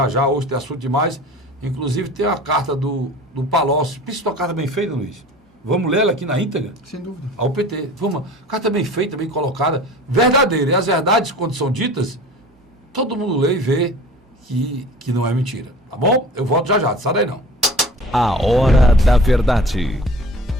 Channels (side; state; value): both; normal; correlation 0.42